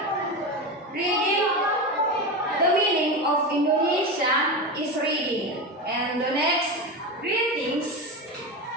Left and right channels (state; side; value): normal; both; correlation 0.20